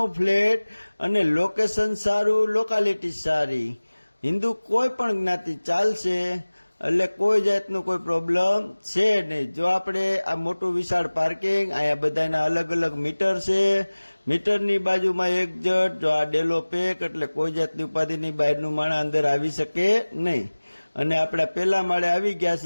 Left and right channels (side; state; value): both; inverted; correlation -1.00